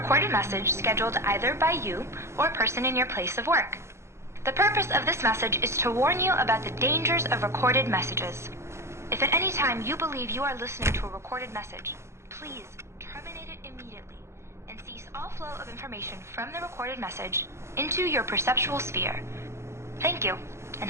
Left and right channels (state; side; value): late; left; 0.13 ms